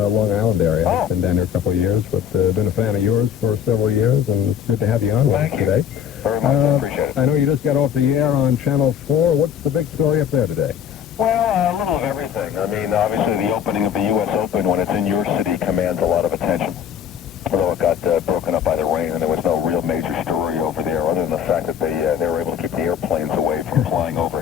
Island area. Oh. I've been down here a couple of years, but been a fan of yours for several years, and it's good to have you on with us today. Very much. I appreciate it. I know you just got off the air on Channel 4. What's the big story up there today? Well, a little of everything. I mean, obviously the opening of the U.S. Open when it's in your city commands a lot of attention. Although it got broken up by the rain and there was no real major story over there other than the fact that they were able to keep the airplanes away from flying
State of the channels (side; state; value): right; quieter; 8.7 dB